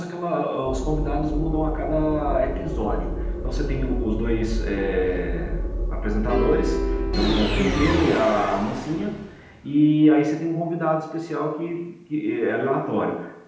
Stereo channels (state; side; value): identical; both; correlation 1.00